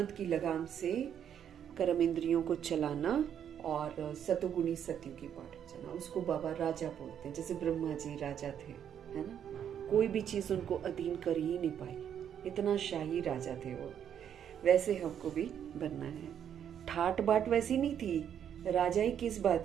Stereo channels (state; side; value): quieter; left; 9.0 dB